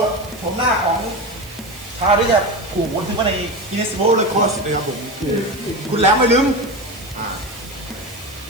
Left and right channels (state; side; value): noise; right; hiss, 18 dB below the sound